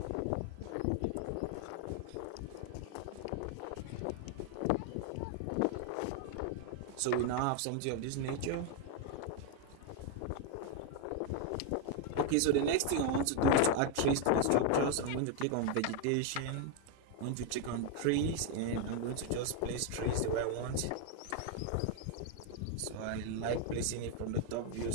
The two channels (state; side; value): different; both; correlation 0.01